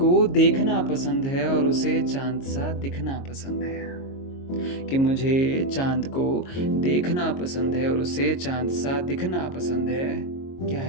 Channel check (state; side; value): late; right; 22 ms